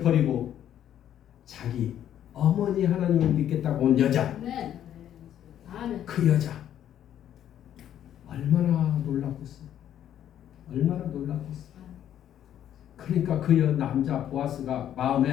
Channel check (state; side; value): quieter; right; 10.7 dB